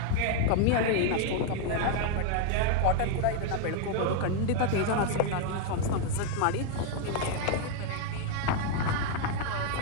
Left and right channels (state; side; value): different; both; correlation 0.00